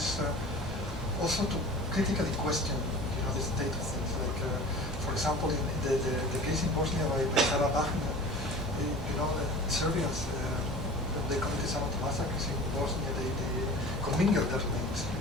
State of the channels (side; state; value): both; normal; correlation 0.39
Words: also to critically question, the state of things. Like, for example, in the case in Bosnia by Sarah Wagner, the Serbians, they committed some of the massacres in Bosnia. They commingled their remains in